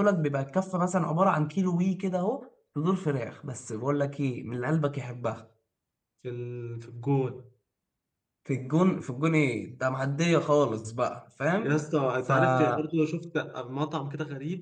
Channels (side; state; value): both; identical; correlation 1.00